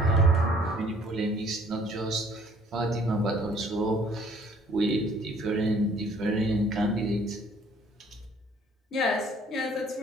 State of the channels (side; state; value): both; normal; correlation 0.58